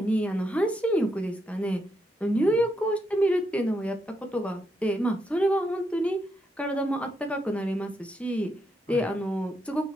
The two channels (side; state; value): both; normal; correlation 0.80